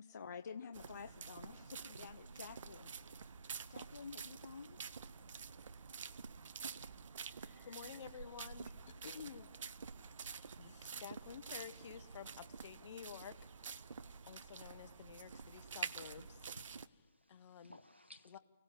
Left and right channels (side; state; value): both; inverted; correlation -0.61